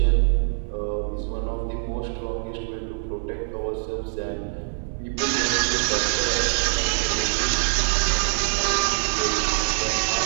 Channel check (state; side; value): silent; left; 61 dB below the other